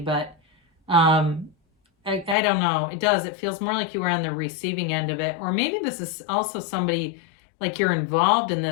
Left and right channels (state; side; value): drops out; right; at 2.4 s